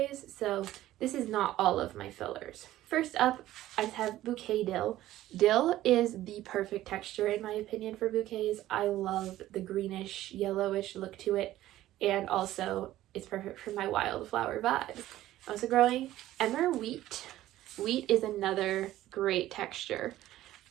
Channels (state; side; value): quieter; left; 14.5 dB